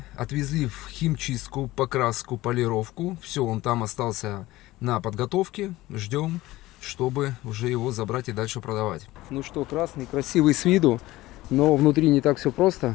отвезли в химчистку, покраску, полировку. Все, он там остался на подготовке. Ждем, чтобы уже его забрать и дальше продавать. Ну что, красный, красивый с виду, но внутри не так все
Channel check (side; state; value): right; quieter; 17.8 dB